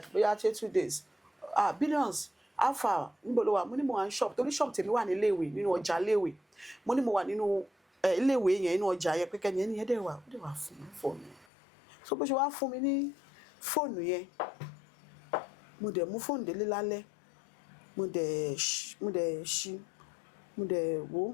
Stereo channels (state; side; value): drops out; right; at 11.5 s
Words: bóyá 2 days Billions alpha níbo ló wà mo ní mo wà ní shop torí shop tèmi wà ní iléèwé nínú ọjà iléèwé mo ní mo wà nínú iléèwé yẹn nínú ọjà yẹn pé kẹ́ni ẹni yẹn dẹ̀ wà fún mi fóònù yẹn so bó ṣe wá fún mi ní fóònù yẹn mo dẹ̀ mú fóònù délé lálẹ́ mo dẹ̀ ṣí mo dẹ̀